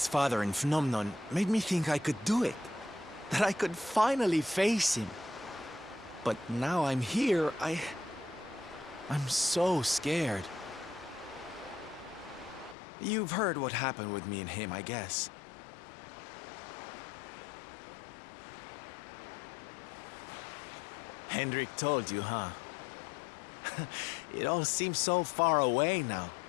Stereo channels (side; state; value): right; drops out; at 12.8 s